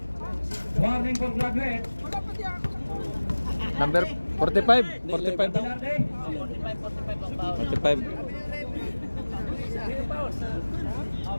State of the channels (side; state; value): both; inverted; correlation -1.00